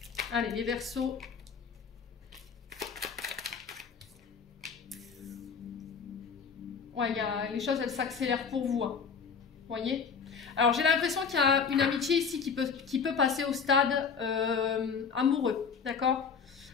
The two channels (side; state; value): right; quieter; 5.9 dB